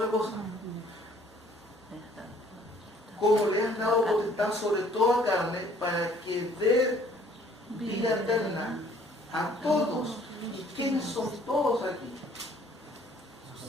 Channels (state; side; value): normal; both; correlation 0.58